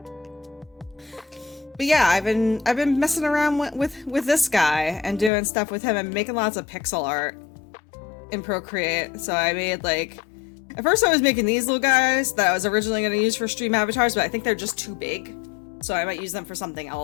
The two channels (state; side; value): drops out; right; at 5.3 s